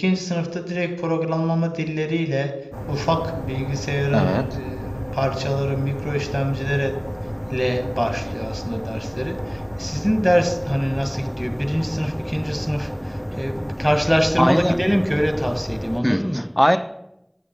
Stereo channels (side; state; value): both; identical; correlation 1.00